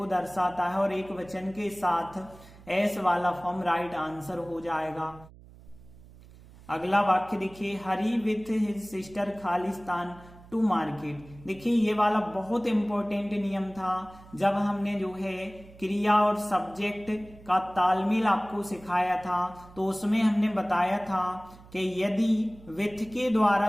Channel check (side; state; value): right; noise; hum, 21 dB below the sound